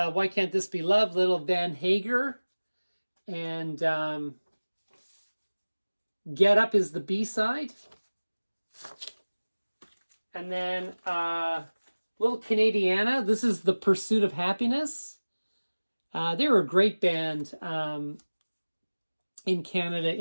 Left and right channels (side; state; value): both; inverted; correlation -1.00